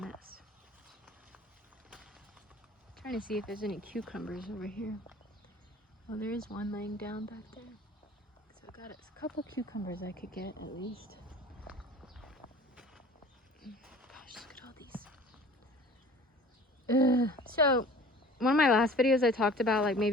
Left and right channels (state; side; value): normal; both; correlation 0.45